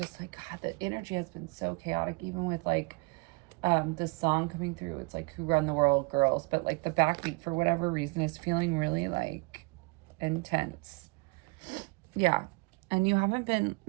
like, God, the energy has been so chaotic, even with like this song coming through. It's like Who Run the World, Girls, but like the backbeat for whatever reason is feeling really like intense. Yeah. And you haven't been,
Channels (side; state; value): left; quieter; 29.0 dB